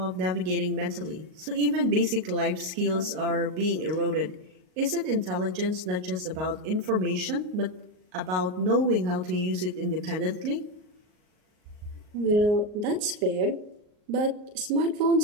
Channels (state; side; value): late; left; 38 ms